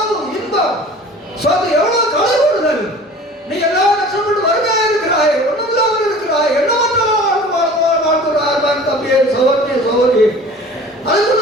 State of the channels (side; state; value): both; normal; correlation 0.43